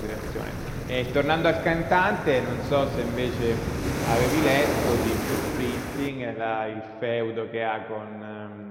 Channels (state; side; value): identical; both; correlation 1.00